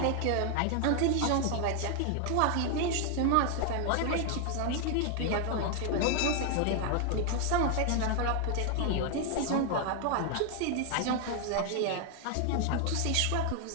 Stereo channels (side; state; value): both; different; correlation 0.00